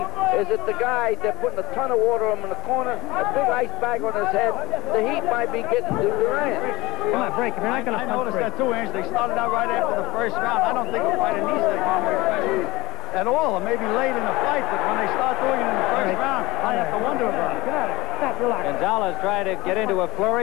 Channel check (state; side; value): quieter; right; 20.5 dB